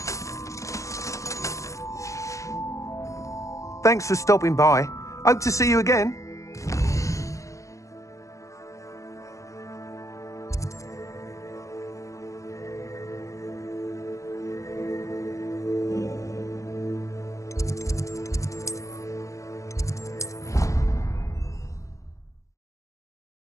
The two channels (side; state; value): right; late; 0.15 ms